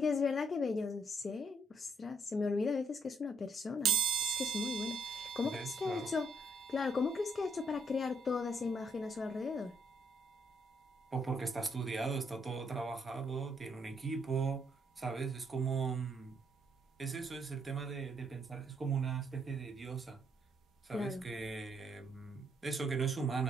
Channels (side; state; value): both; normal; correlation 0.72